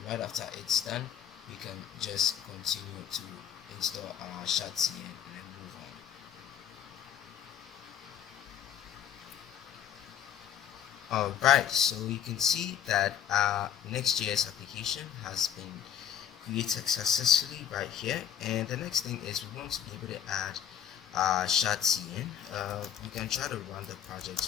right after it's done, we can just continue to install our Shatsi and then move on. Alright, so you can see that our Next.js application has been created successfully right here, and the next thing is we want to be able to add Shatsi in. We can try to run the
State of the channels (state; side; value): quieter; right; 9.3 dB